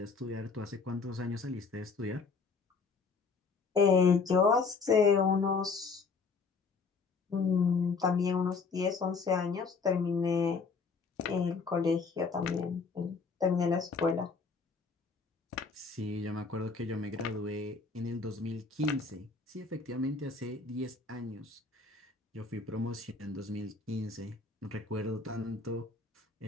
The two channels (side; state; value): right; quieter; 4.7 dB